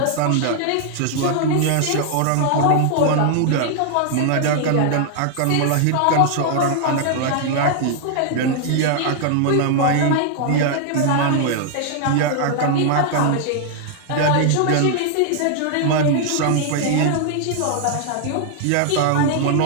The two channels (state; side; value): different; both; correlation 0.00